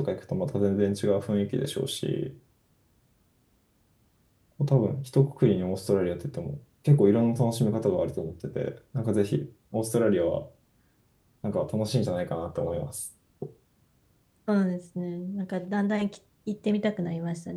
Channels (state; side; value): identical; both; correlation 1.00